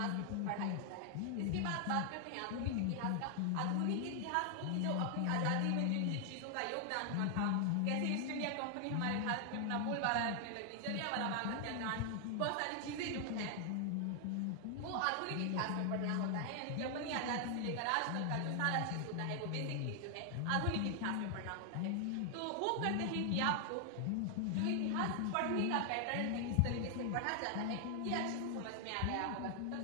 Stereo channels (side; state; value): both; different; correlation 0.00